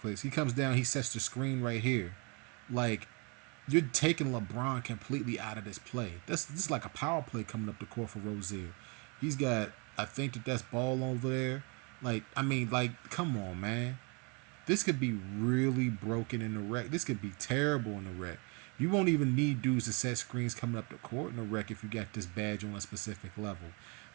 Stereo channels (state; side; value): quieter; left; 32.5 dB